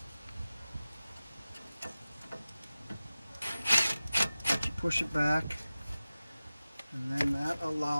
that you push it back, and then that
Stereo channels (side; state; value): both; inverted; correlation -0.96